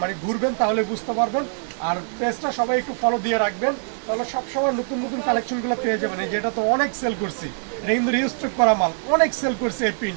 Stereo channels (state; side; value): silent; left; digital silence